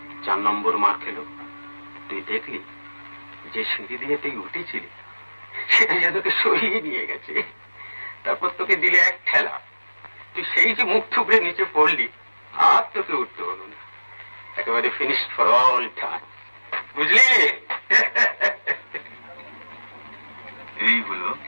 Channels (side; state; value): both; inverted; correlation -1.00